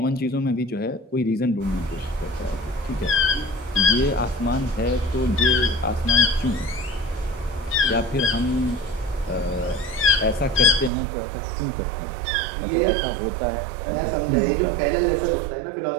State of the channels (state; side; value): drops out; left; at 10.9 s